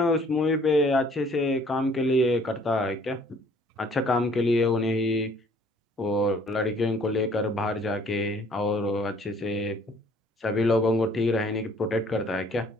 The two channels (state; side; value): normal; both; correlation 0.57